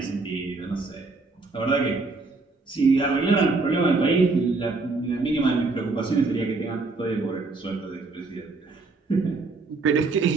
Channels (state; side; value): quieter; left; 3.7 dB